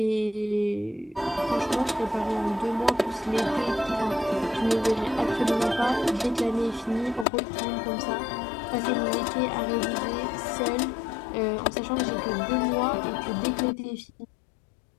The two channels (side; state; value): right; drops out; at 7.2 s